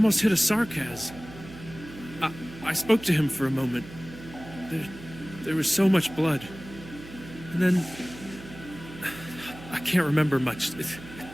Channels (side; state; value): right; noise; hum, 16 dB below the sound